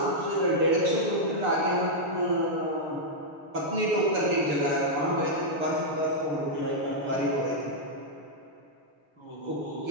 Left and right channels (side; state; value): left; late; 6.8 ms